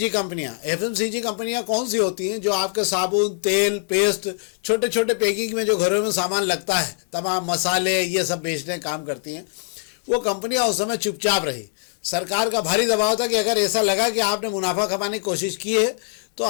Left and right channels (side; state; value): right; silent; 59 dB below the other